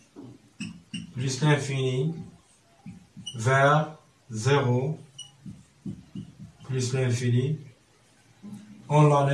plus l'infini vers 0 plus l'infini. On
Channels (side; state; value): both; identical; correlation 1.00